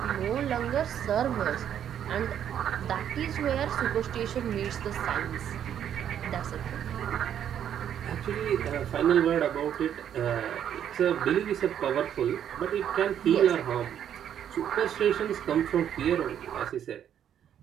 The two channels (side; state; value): left; quieter; 9.6 dB